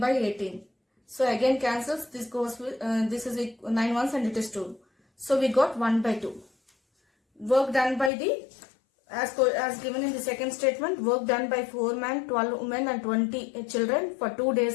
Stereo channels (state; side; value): drops out; right; at 8.1 s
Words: 18. So again cancels. This goes with, this is 9 ones and it is 2. So we got 1 by 2. Work done by the, as given in the second statement, work done by 4 men, 12 women and 20 children for 2